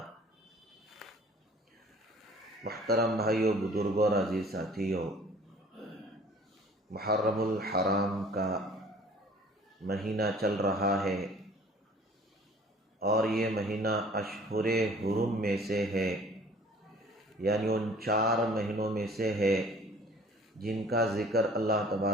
محترم بھائیو، بزرگوں اور عزیز ساتھیو، محرم الحرام کا مہینہ چل رہا ہے اور یہ مہینہ اشہر حرم میں سے ہے، یعنی ان 4 مہینوں میں سے ہے جن کا ذکر اللہ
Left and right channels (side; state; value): both; normal; correlation 0.51